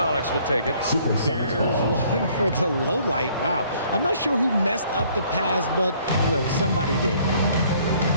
will take it. There's one for the low light. Wow. I'm not sure who messed up the pass, but look, somebody did.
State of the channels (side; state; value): both; inverted; correlation -0.60